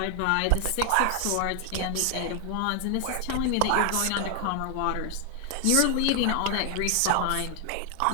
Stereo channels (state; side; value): different; both; correlation 0.00